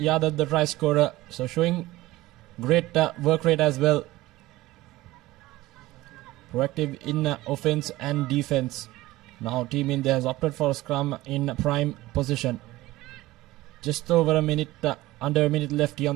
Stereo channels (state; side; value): quieter; left; 18.1 dB